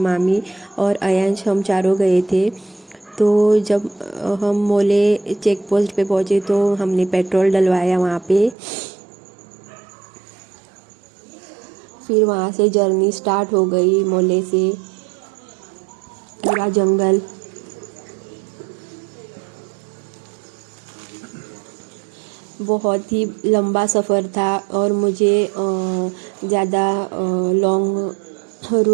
और अयांश, हम चारों गए थे। तो जब हम मोले चेक पोस्ट पे पहुँचे तो हमने पेट्रोल डलवाया वहाँ पे। फिर वहाँ से जर्नी स्टार्ट हो गई। मोले से पूरा जंगल, बहुत ही लंबा सफ़र था और मुझे ज़्यादा लॉन्ग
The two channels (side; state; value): left; drops out; at 8.6 s